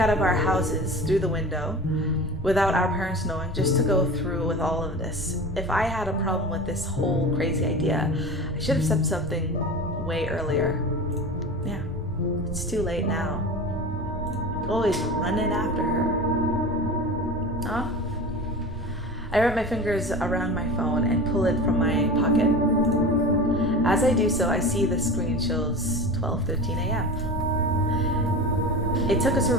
of our houses through the window without our parents knowing, just to go through with all of this. If I had a problem with this whole crazy idea, I should have said something way earlier. Yeah, it's too late now. Always running after her. Huh? I wrap my fingers around my phone and pull it from my pocket. As I do so, I see the screen shows 12:13 a.m. It took us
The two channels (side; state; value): both; normal; correlation 0.33